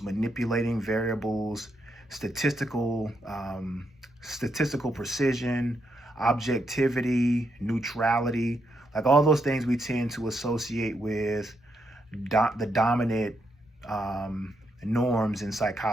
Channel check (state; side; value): normal; both; correlation 0.80